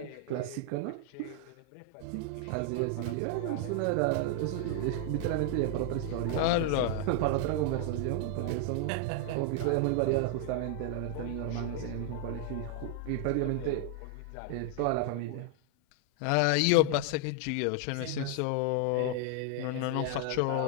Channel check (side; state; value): both; different; correlation 0.00